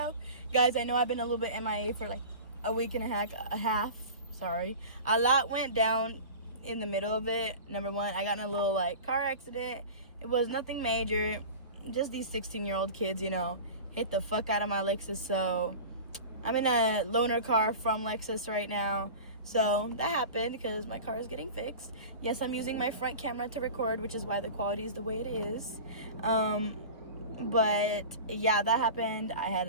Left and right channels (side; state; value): both; inverted; correlation -0.34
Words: Guys, I know I've been a little bit MIA for like a week and a half. Sorry. A lot went down in the middle of it. Number one, I got in a little like car accident. It was nothing major. Just these 16-year-old kids, hit the fuck out of my Lexus. So I'm in a loaner car from Lexus right now. So that happened because my car is getting fixed. Yes, I'm using my front camera to record, which is why the quality is the way it is. But yeah, that happened. I